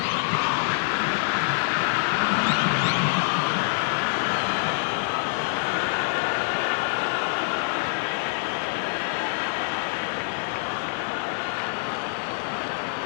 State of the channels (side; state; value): right; silent; 58 dB below the other